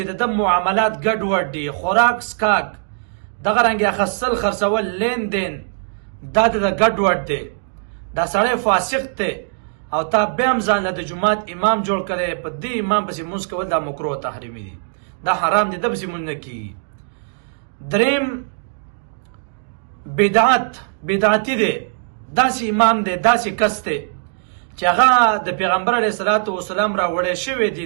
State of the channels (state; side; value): silent; left; digital silence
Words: د معاملات ګډوډ دي، خوراک سکاک، دغه رنګ اخیستل خرڅول، لین دین دا د ګډوډ دی، دا سړی فاسق دی، او تا بیا هم ځان له د جماعت امام جوړ کړی، په دې امام پسې مونځ کول دا مکروه تحریمي دی، دا حرام دی، د پسې مونځ نه کېږي. دریم بدعتي دی، داسې امام دی، داسې کس دی چې هغه د پیغمبر علیه الصلاة والسلام راوړی شوی